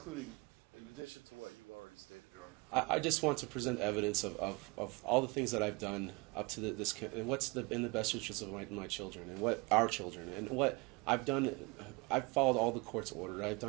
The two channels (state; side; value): quieter; left; 27.5 dB